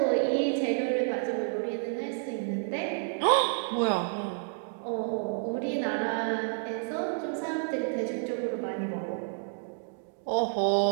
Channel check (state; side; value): silent; left; digital silence